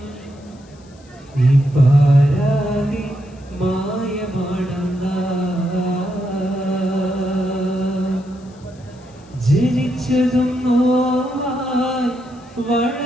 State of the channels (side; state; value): left; noise; hiss, 29 dB below the sound